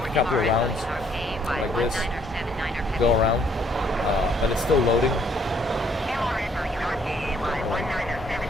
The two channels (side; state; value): both; normal; correlation 0.66